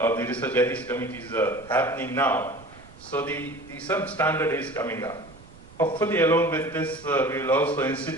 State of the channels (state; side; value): noise; right; rumble, 21 dB below the sound